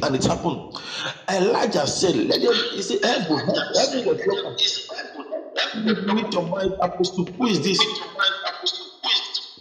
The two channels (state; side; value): identical; both; correlation 1.00